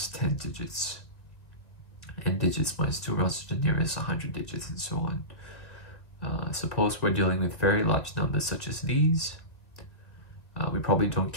10 digits. N digits minus 2 rounds to the nearest 100 digits, and so on. Suppose we're dealing with very large numbers such as these. We probably don't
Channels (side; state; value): right; late; 1.8 ms